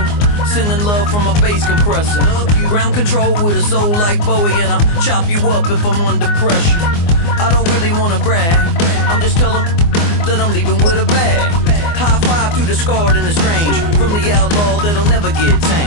Sending love from a bass compressor. Ground control with a soul like Bowie, and I'll chop you up if I'm under pressure. I don't really wanna brag. I'm just telling that I'm leaving with a bag. High five to the scarred and the strange. From the outlaw that'll never get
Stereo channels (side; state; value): right; late; 24 ms